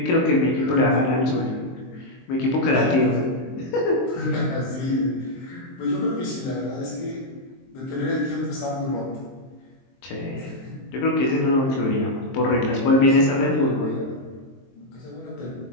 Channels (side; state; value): right; late; 23 ms